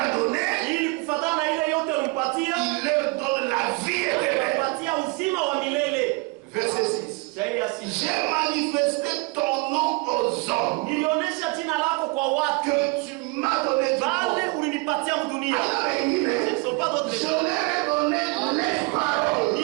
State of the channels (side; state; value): left; quieter; 27.3 dB